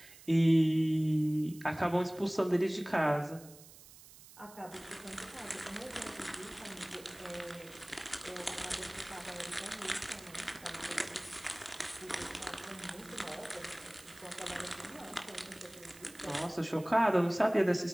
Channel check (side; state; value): right; noise; hiss, 20 dB below the sound